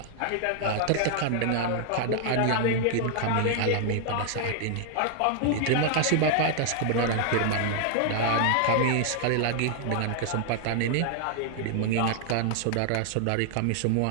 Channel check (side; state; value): both; different; correlation 0.00